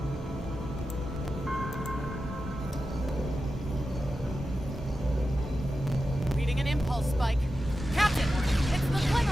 Reading an impulse spike. Captain, it's the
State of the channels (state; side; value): normal; both; correlation 0.91